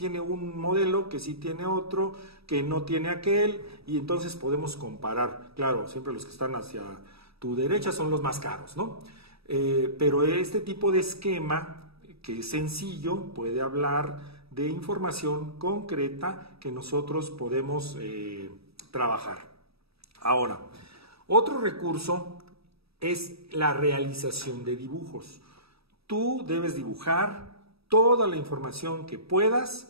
un modelo, que sí tiene otro, que no tiene aquel, y entonces podemos comparar. Claro, siempre los que están hacia tu derecha son los más caros, ¿no? Pero este tipo de esquema, que es sencillo, puede hablar de información concreta que nosotros podemos trabajar. Ahora, otro recurso es la realización de dibujos. Tú debes dibujar toda la información que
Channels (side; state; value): left; late; 0.77 ms